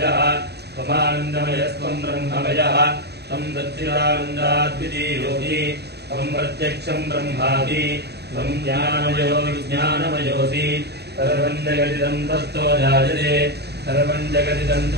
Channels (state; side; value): late; left; 0.48 ms